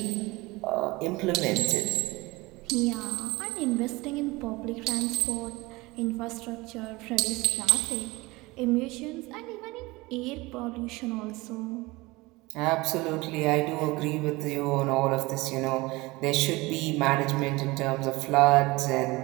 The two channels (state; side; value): quieter; left; 22.3 dB